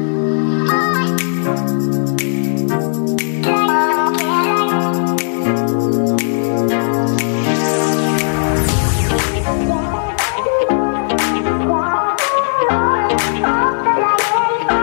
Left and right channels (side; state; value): right; silent; digital silence